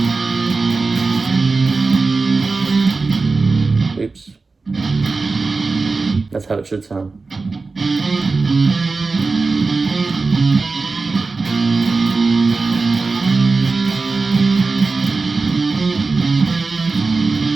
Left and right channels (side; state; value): left; quieter; 4.0 dB